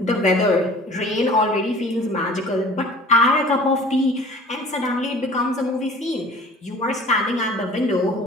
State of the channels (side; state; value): both; normal; correlation 0.46